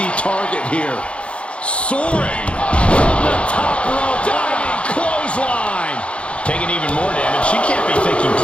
target here. Soaring. From the top rope. Diving clothesline. Taking even more damage. She can't be thinking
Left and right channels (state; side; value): late; right; 0.060 ms